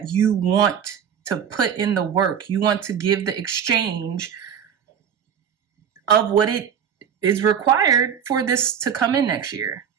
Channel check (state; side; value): quieter; left; 8.1 dB